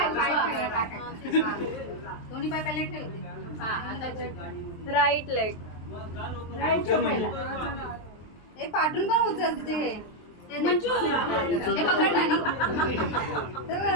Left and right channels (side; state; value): right; late; 23 ms